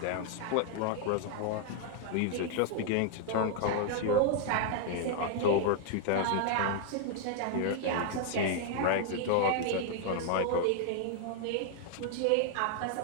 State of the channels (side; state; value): both; different; correlation 0.00